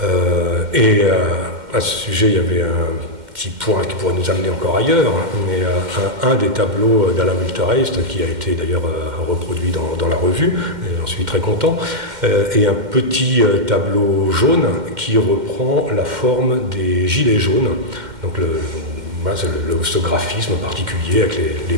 Et à ce sujet, il y avait un petit point qui pourrait nous amener encore ailleurs, mais un des tableaux d'Alain Milterheist, qui a été d'ailleurs reproduit dans la revue, et j'en suis très content, et un petit tableau jaune qui reprend la forme des gilets jaunes. Donc ce graphisme particulier avec les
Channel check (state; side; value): late; left; 2.1 ms